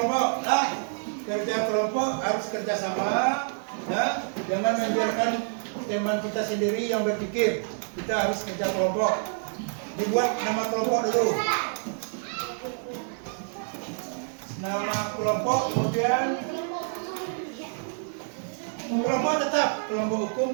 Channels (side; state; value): left; silent; 60 dB below the other